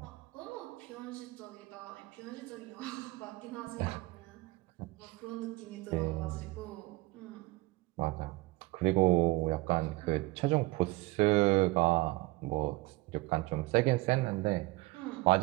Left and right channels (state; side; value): quieter; left; 21.5 dB